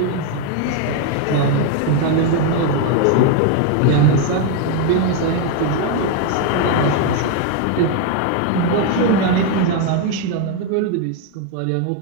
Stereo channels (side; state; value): both; different; correlation 0.01